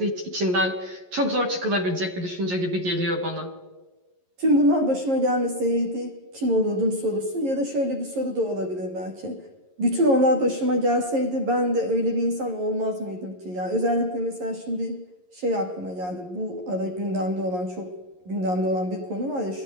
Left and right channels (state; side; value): late; left; 11 ms